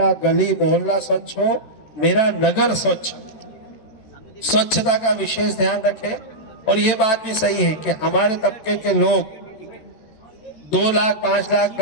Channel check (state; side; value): late; right; 13 ms